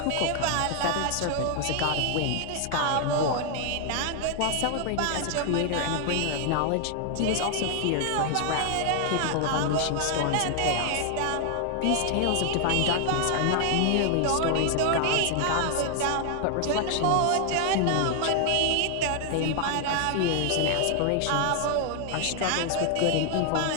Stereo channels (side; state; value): both; different; correlation 0.00